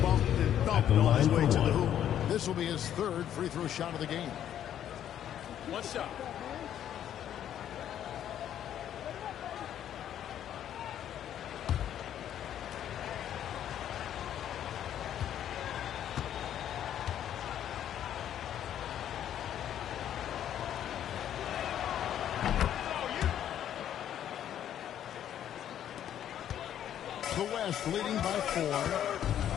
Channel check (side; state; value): right; quieter; 10.5 dB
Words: bumped and At thumped the on his line way for to the one. hoop. This will be his third free throw shot of the game. One shot. The West leading by 4.